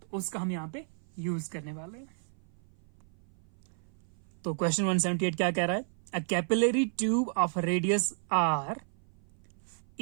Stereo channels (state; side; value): silent; left; 55 dB below the other